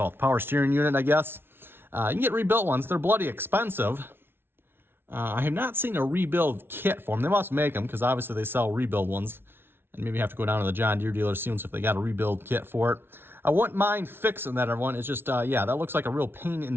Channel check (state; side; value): late; left; 0.11 ms